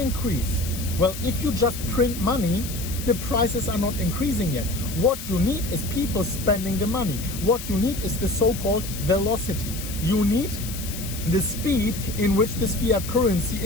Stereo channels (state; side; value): noise; left; hiss, 10 dB below the sound